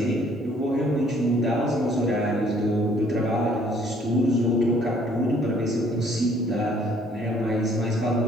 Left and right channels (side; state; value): both; normal; correlation 0.61